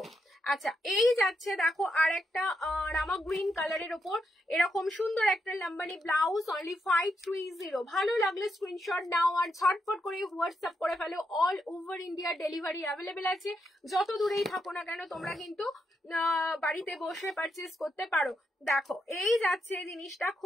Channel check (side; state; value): both; normal; correlation 0.82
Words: আচ্ছা এই যাচ্ছে দেখো আর একটা রামা গ্রিন কালারের ওপর এরকম সুন্দর একটা লাম্বানি ব্লাউজ, অনলি 530। ভালো লাগলে স্ক্রিনশট নাও আর ঝটপট করে হোয়াটসঅ্যাপ করে ফেলো। All over India delivery available আছে, যত দূরেই থাকো না কেন তোমরা কিন্তু বাড়িতে বসে পারচেস করতে পারো। দেখো এই যাচ্ছে জিনিসটা,